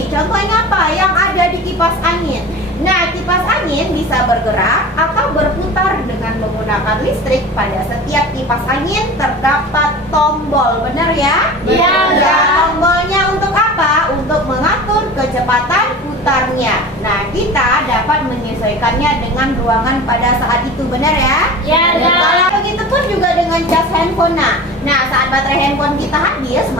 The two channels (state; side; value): normal; both; correlation 0.36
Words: Contohnya apa? Yang ada di kipas angin. Nah, kipas angin bisa bergerak atau berputar dengan menggunakan listrik. Pada setiap kipas angin terdapat tombol, benar ya? Iya. Ya, tombolnya untuk apa? Untuk mengatur kecepatan putarnya. Nah, kita dapat menyesuaikannya dengan ruangan pada saat itu, benar ya? Ya, Dan ya. kalau begitu pun juga dengan cas handphone. Nah, saat baterai handphone kita habis,